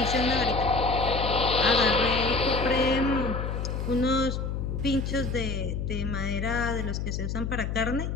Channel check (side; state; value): left; noise; hum, 3 dB below the sound